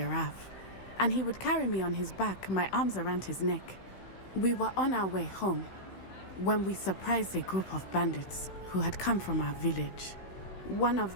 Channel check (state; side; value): late; right; 16 ms